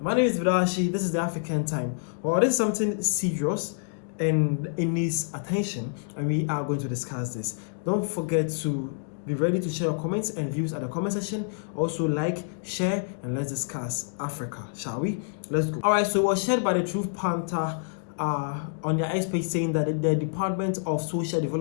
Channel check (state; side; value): silent; right; digital silence